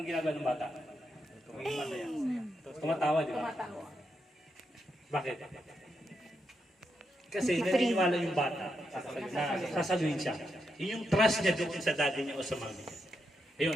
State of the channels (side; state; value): both; normal; correlation 0.83